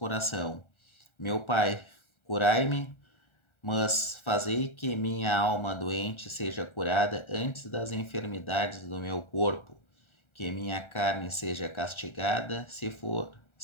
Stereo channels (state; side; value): late; right; 1.4 ms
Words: meu Pai, curai-me, mas fazei que minha alma doente seja curada antes das enfermidades do meu corpo, que minha carne seja castigada,